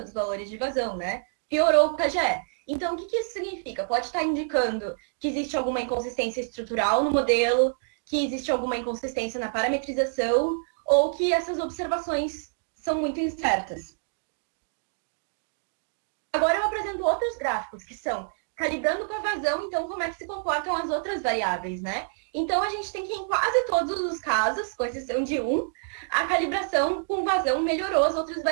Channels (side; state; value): left; silent; digital silence